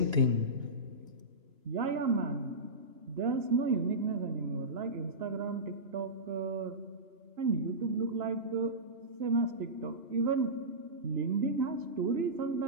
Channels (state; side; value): late; left; 2.9 ms